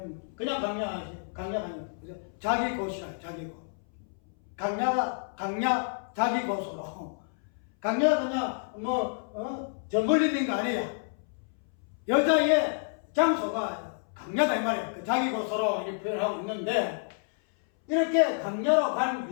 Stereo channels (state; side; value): silent; right; 58 dB below the other